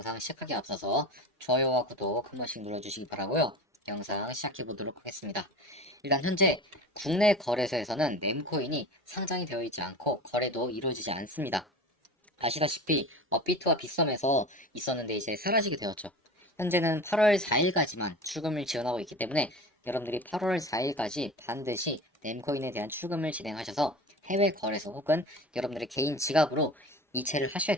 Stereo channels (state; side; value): normal; both; correlation 0.34